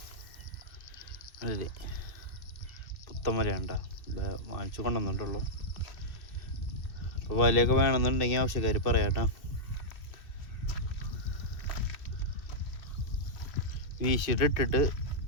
അല്ലേ പുത്തൻ വല ഉണ്ടാ. വാങ്ങിച്ചു കൊണ്ടുവന്നിട്ടുള്ളൂ. അപ്പോൾ വലയൊക്കെ വേണമെന്നുണ്ടെങ്കിൽ ആവശ്യക്കാർ പറയാട്ടോ. വീശിയിട്ട് ഇട്ടിട്ട്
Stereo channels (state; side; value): late; right; 2.6 ms